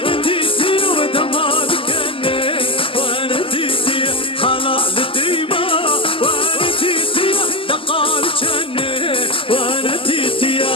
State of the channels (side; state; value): right; late; 0.25 ms